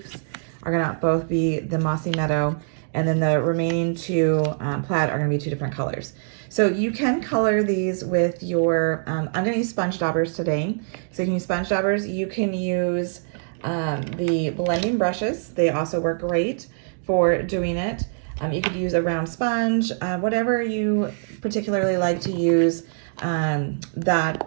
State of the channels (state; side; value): silent; left; digital silence